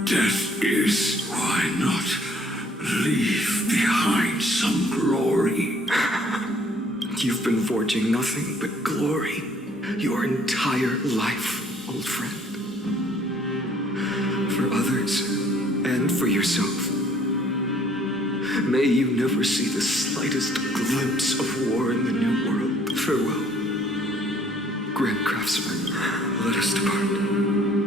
death is, why not leave behind some glory? You've been forging nothing but glory your entire life, old friend. For others, and for yourself. May you never see the slightest glimpse of war in the New World. Farewell, Grand Craftsman. Let us depart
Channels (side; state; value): both; normal; correlation 0.60